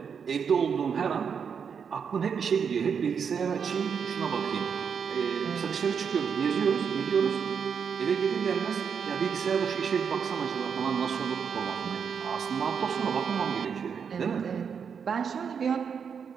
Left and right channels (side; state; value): left; quieter; 6.7 dB